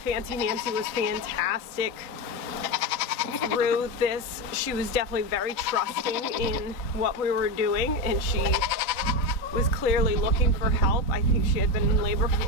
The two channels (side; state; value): right; late; 3.8 ms